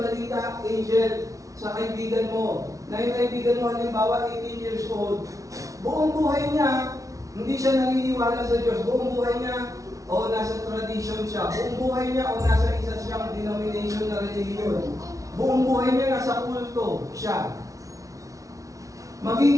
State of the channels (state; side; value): late; left; 0.16 ms